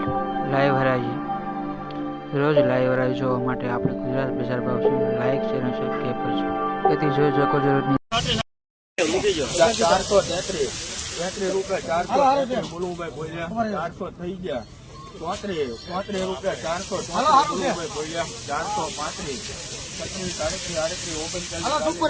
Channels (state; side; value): identical; both; correlation 1.00